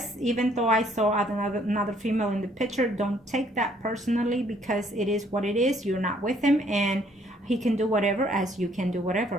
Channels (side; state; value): both; normal; correlation 0.64